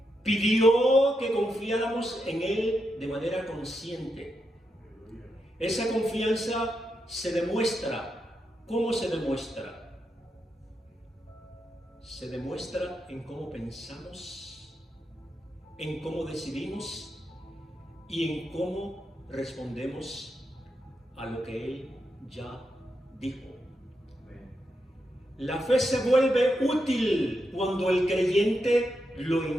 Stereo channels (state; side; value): normal; both; correlation 0.84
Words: Pidió que confiáramos en Él de manera consciente. Esa confianza se demuestra. ¿Cómo se demuestra? Se demuestra en cómo pensamos, en cómo decidimos y en cómo respondemos a lo que Él ya dijo. La fe se vuelve útil cuando el creyente lo